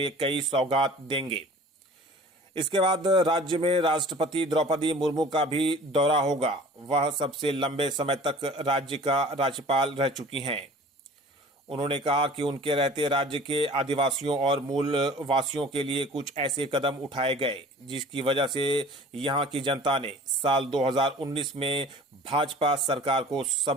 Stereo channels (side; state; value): both; normal; correlation 0.45